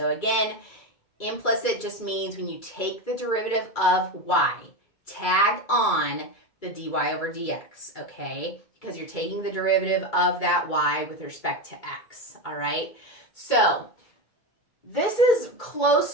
again, implicit just means when you take the derivative of y, tag on the dy over dx, okay? Because you're taking the derivative of that y with respect to x, all right? So this is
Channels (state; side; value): late; right; 2.3 ms